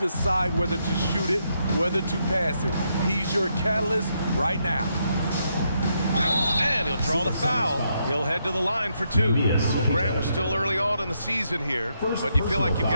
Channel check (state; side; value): inverted; both; correlation -0.78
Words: whether to shoot it, whether to pass it. He's your catalyst right now. And he'll draw the foul. He'll head to the line for 2. Well, Grant, we're still early on in the season here, but you feel like you've